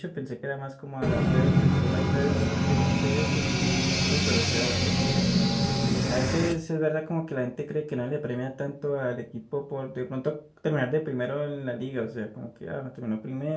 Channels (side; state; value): both; identical; correlation 1.00